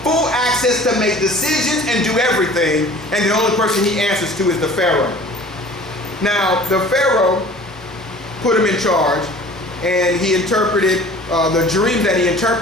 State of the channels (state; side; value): normal; both; correlation 0.46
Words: full access to make decisions and do everything. And the only person he answers to is the Pharaoh. Now, the Pharaoh put him in charge, and he interpreted the dream that he